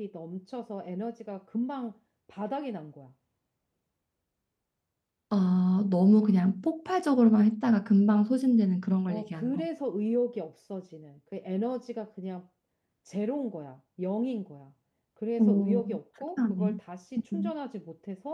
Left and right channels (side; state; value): both; identical; correlation 1.00